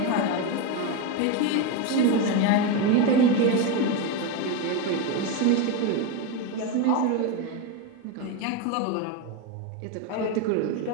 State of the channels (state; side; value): different; both; correlation 0.04